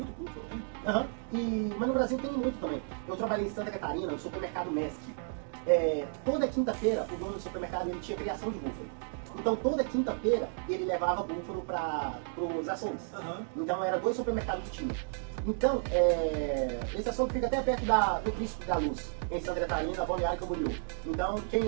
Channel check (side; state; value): left; silent; digital silence